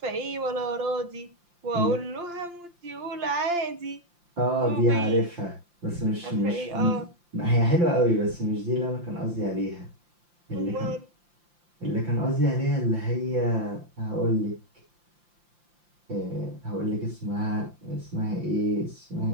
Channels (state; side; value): late; left; 5.8 ms